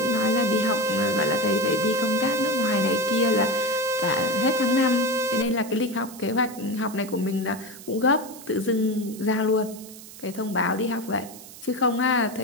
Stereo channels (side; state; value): right; noise; hiss, 17 dB below the sound